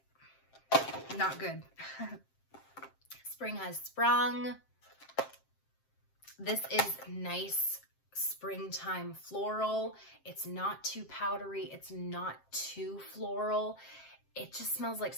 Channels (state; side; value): late; right; 7.6 ms